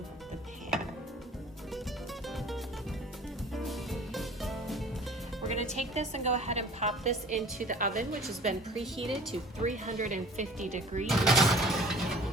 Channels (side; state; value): both; normal; correlation 0.47